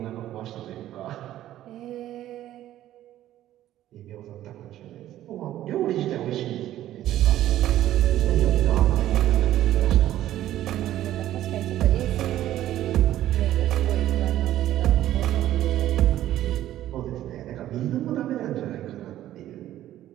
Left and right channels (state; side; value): quieter; left; 13.2 dB